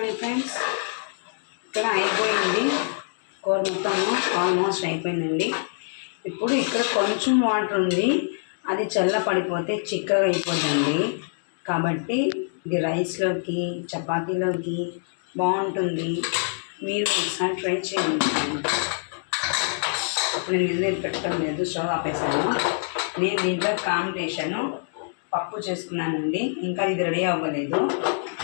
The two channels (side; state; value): right; silent; digital silence